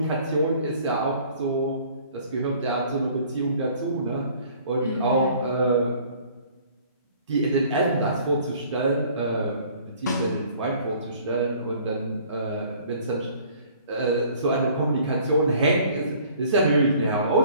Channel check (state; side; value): inverted; both; correlation -0.55